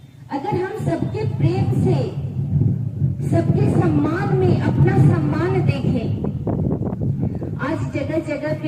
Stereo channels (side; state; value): both; identical; correlation 1.00